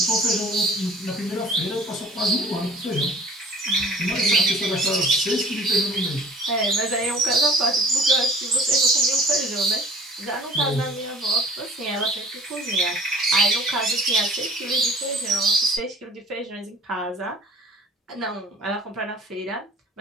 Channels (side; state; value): both; normal; correlation 0.49